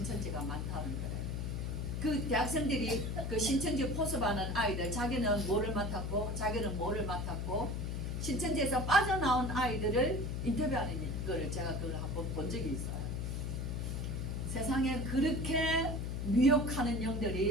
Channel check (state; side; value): noise; left; hum, 2 dB below the sound